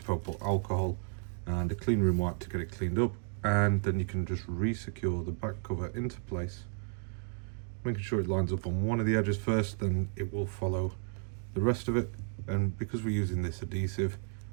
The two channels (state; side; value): silent; left; 56 dB below the other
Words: alcohol and a clean room wipe to get it cleaned up, and then you can just re-secure the back cover into place, making sure it lines up on one of the edges first, then it will follow the rest of it. And because we're using this adhesive,